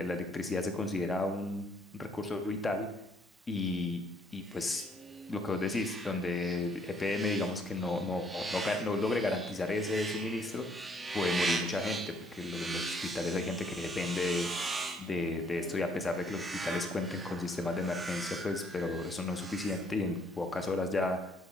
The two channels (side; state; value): both; normal; correlation 0.65